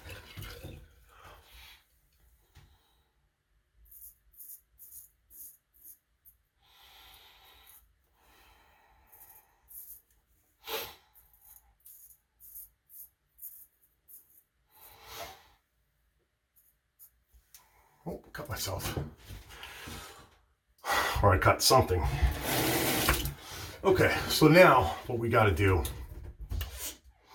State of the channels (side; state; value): both; identical; correlation 1.00